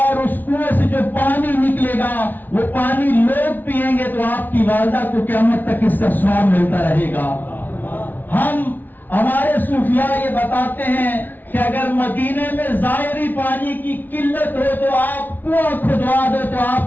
اس کنویں سے جو پانی نکلے گا وہ پانی لوگ پیئیں گے تو آپ کی والدہ کو قیامت تک اس کا ثواب ملتا رہے گا. ہمارے صوفیاء یہ بتاتے ہیں کہ اگر مدینے میں ظاہری پانی کی قلت ہو تو آپ کنواں کھدوا دو تو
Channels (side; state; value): right; late; 0.085 ms